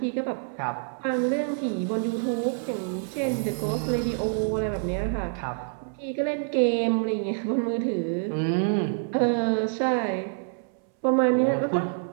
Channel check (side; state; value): left; silent; 60 dB below the other